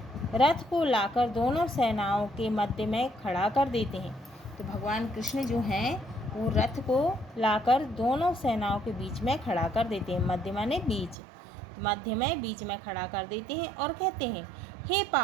रथ को लाकर दोनों सेनाओं के मध्य में खड़ा कर देते हैं। तो भगवान कृष्ण जो हैं वो रथ को लाकर दोनों सेनाओं के बीच में खड़ा कर देते हैं। मध्य माने बीच, तो मध्य में बीच में खड़ा कर देते हैं और कहते हैं, हे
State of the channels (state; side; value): drops out; left; at 11.2 s